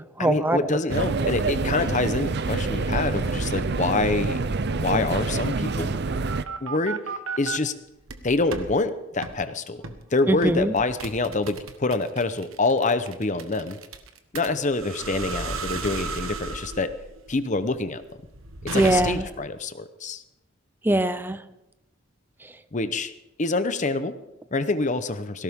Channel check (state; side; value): normal; both; correlation 0.37